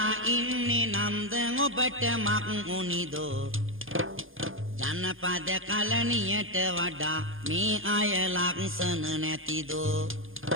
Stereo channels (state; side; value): late; left; 0.59 ms